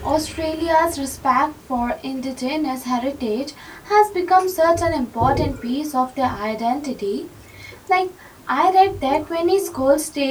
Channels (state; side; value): identical; both; correlation 1.00